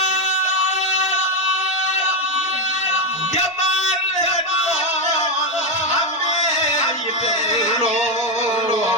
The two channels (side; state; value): both; normal; correlation 0.07